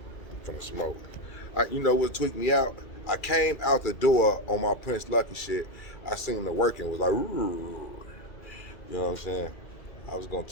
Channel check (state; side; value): late; right; 2.3 ms